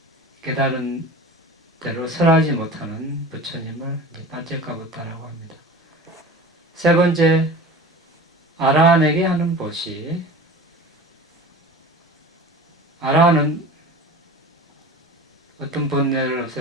깨달은 대로 설하지 못하는 부처님을 빠째까 붓다라고 합니다. 세 번째, 아라한에게 하는 보시. 아라한은 어떤 번뇌를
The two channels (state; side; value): normal; both; correlation 0.36